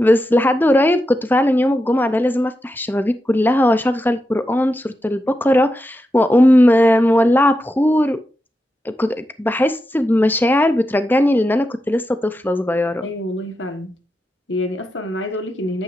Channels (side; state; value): both; normal; correlation 0.88